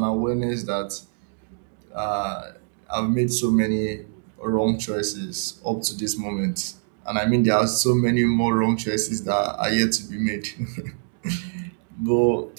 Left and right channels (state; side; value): silent; left; 62 dB below the other